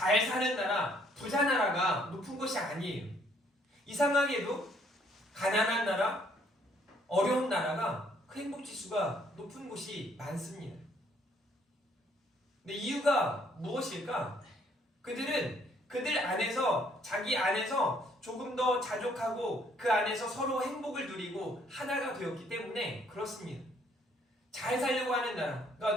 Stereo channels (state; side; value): normal; both; correlation 0.65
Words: 사는 나라, 부자 나라가 높은 것이 아니에요. 이상하게도 가난한 나라, 어려운 나라가 그 행복지수가 높은 곳이 많습니다. 근데 이유가 무엇일까? 그들 안에서 자기 안에서 조금 더 자족하고 그 안에서 서로 행복을 누리고 하나가 되었기 때문에 그렇습니다. 잘 살려고 하는 나라.